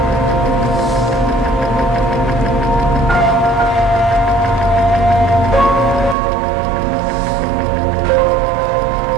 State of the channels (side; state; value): left; drops out; at 6.2 s